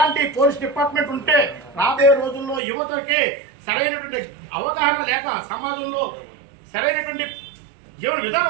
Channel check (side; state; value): left; drops out; at 2.6 s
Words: పోలీస్ డిపార్ట్మెంట్ ఉంటే రాబోయే రోజుల్లో యువతకి సరైనటువంటి అవగాహన లేక సమాజంలో సరైనటువంటి జీవన